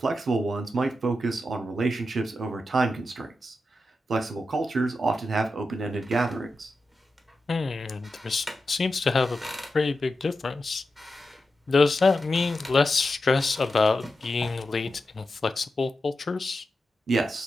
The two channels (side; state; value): both; normal; correlation 0.90